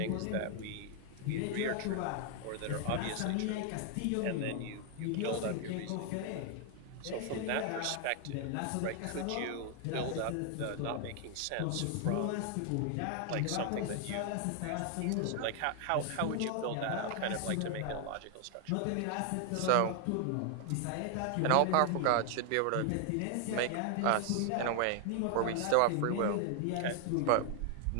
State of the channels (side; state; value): both; different; correlation 0.00